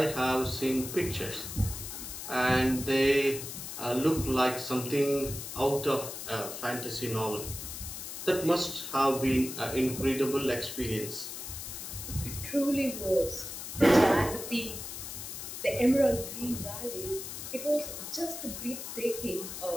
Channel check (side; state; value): left; noise; hiss, 8 dB below the sound